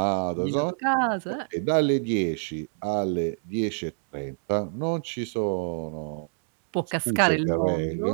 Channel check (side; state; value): left; silent; digital silence